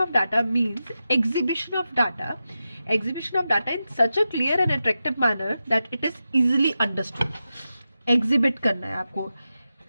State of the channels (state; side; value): inverted; both; correlation -0.91